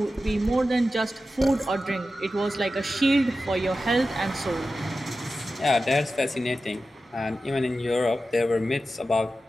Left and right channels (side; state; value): both; normal; correlation 0.93